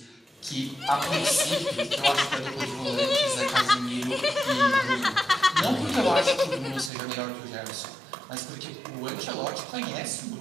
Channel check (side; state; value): left; drops out; at 6.9 s